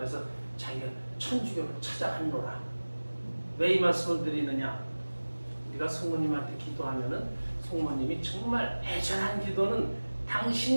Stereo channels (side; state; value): both; inverted; correlation -1.00